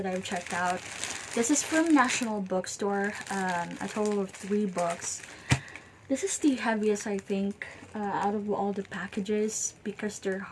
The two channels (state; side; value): identical; both; correlation 1.00